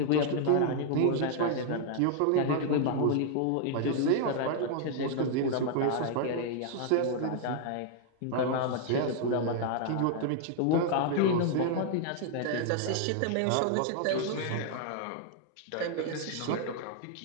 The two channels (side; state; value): both; different; correlation 0.00